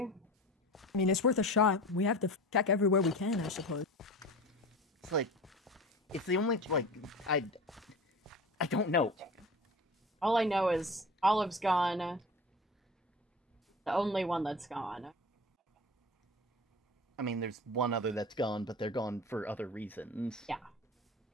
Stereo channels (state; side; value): normal; both; correlation 0.34